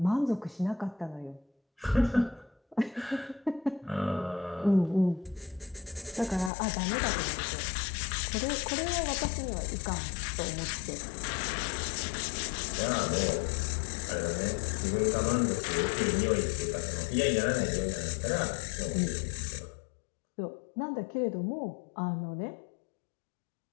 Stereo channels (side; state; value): right; drops out; at 6.5 s